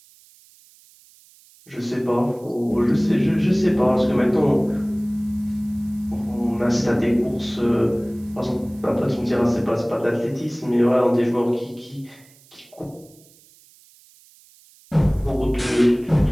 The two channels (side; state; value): right; noise; hiss, 28 dB below the sound